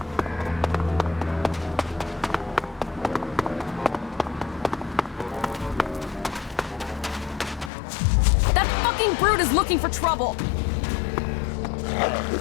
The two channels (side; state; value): right; drops out; at 7.7 s